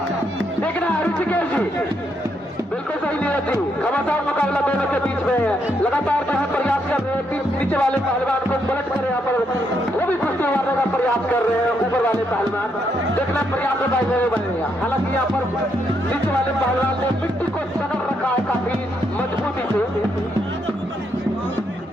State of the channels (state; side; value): normal; both; correlation 0.77